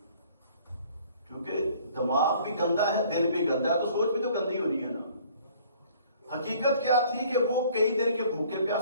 کیونکہ دماغ بھی گندا ہے، دل بھی گندا ہے، تو سوچ بھی تو گندی ہونی ہے نا۔ حقیقت کیا تھی کہ وہ کئی دن کے بھوکے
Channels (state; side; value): inverted; both; correlation -0.55